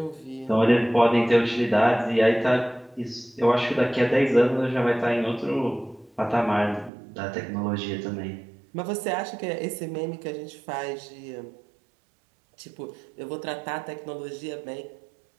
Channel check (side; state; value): left; drops out; at 6.9 s